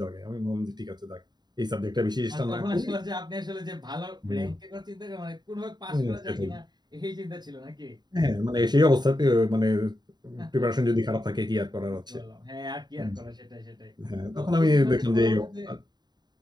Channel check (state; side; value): late; left; 0.20 ms